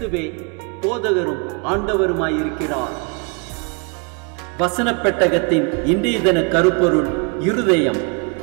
போதகரும் ஆண்டவருமாயிருக்கிறார். வசனப் பெட்டகத்தின் இன்றைய தின கருப்பொருள் இருதயம்.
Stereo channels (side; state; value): left; quieter; 35.1 dB